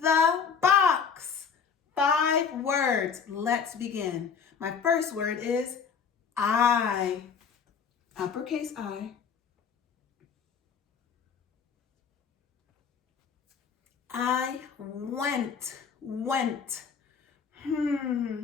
box. 5 words. Let's begin. My first word is I. Uppercase I. I went.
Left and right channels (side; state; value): right; quieter; 6.4 dB